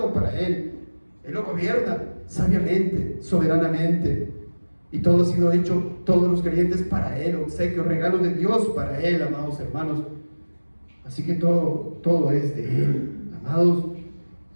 para Él. Él lo gobierna sabiamente, soberanamente. Y todo ha sido hecho, todos los creyentes para Él, obsequios, regalos de Dios para Él, amados hermanos. Así que todo es de Él, amados.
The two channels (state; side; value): inverted; both; correlation -1.00